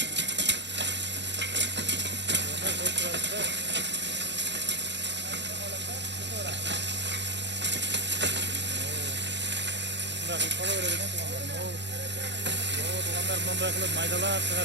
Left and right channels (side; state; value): left; late; 0.51 ms